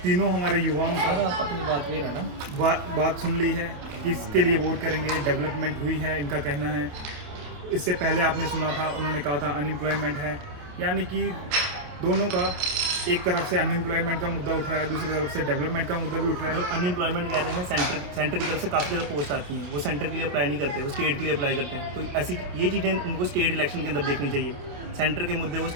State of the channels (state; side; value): late; left; 28 ms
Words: तीनों हमारे युवाओं का सर आप अपनी बात पे रहना। बात सुन ली है, किसके लिए वोट करेंगे, डेवलपमेंट हुई है इनका कहना है। इससे पहले आपने सुना था, उन्होंने कहा था अनएम्प्लॉयमेंट है, यानी कि दोनों का एक तरफ से अनएम्प्लॉयमेंट का मुद्दा उठ रहा है, दूसरी तरफ से डेवलपमेंट का मुद्दा भी उठ रहा जो है। अनएम्प्लॉयमेंट कह रहे हैं, सेंटर की तरफ से काफ़ी ज़्यादा पोस्ट आती हैं, वो सेंटर के लिए अप्लाई नहीं करते, वो स्टेट के लिए अप्लाई करते हैं। तो ऐसी ये चीज़ें उनको स्टेट इलेक्शन के अंदर देखनी चाहिए। सेंटर के मुद्दे वो